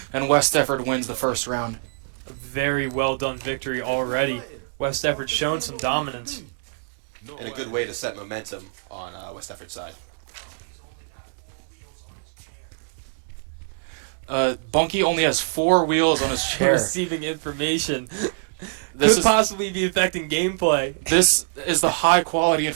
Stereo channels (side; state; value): left; silent; digital silence